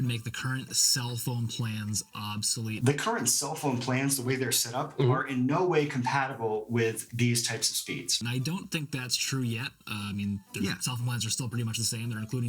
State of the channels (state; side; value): identical; both; correlation 1.00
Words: make the current cell phone plans obsolete. The current cell phone plans, the way they're set up, are in no way compatible with these types of speeds. And I don't think that's true yet. I mean, their cell phone plans are still pretty much the same. They're